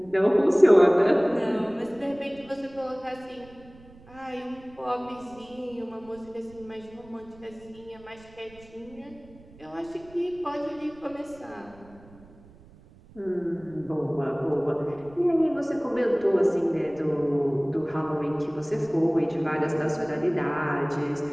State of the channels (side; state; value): right; noise; rumble, 24 dB below the sound